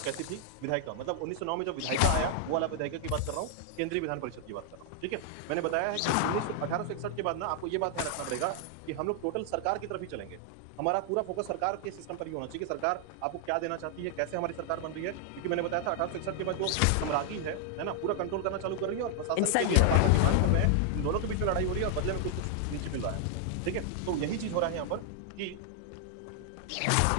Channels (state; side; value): different; both; correlation 0.00